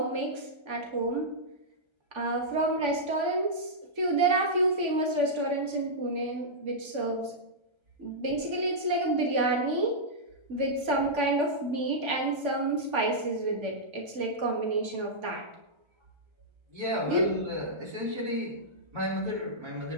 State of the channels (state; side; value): late; left; 1.3 ms